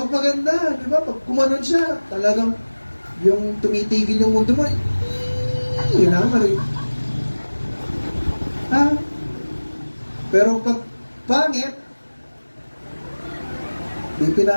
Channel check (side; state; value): both; inverted; correlation -1.00